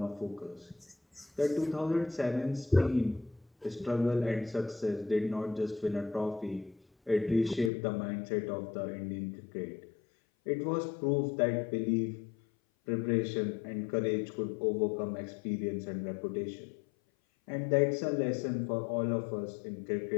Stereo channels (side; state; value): right; drops out; at 7.7 s